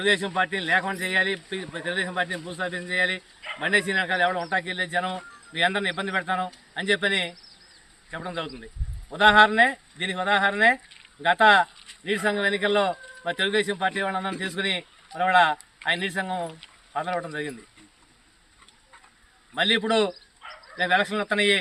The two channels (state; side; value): identical; both; correlation 1.00